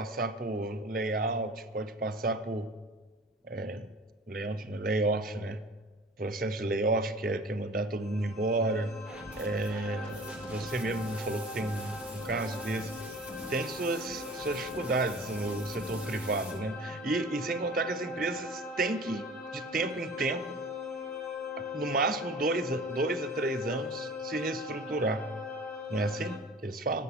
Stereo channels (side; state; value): both; normal; correlation 0.43